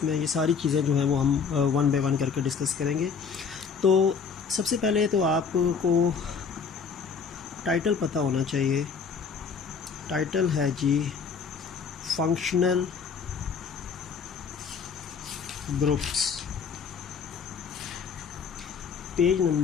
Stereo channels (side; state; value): right; quieter; 5.9 dB